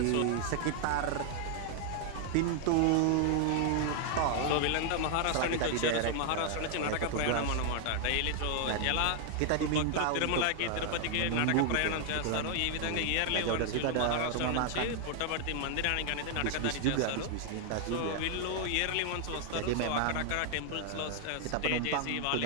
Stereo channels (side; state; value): both; different; correlation 0.00